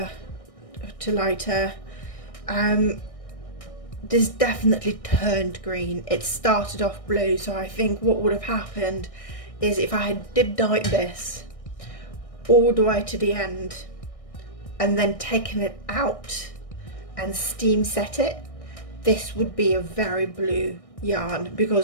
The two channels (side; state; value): right; late; 1.6 ms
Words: to lighter. This definitely turned green. It started off blue, so I think what would have happened is if I had dip dyed this all the way to the end and then taken it out and steam set it, this would be a very blue yarn,